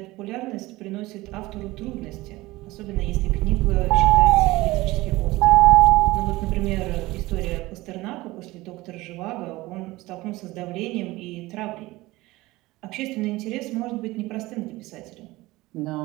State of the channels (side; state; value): left; quieter; 19.5 dB